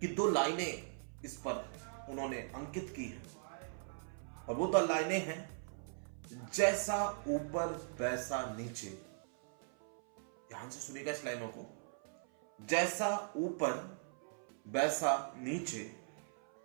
2 लाइनें इस पर उन्होंने अंकित की है। और वो 2 लाइनें हैं, जैसा ऊपर वैसा नीचे। ध्यान से सुनिएगा इस लाइनों को। जैसा ऊपर वैसा नीचे,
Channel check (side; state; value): left; silent; 51 dB below the other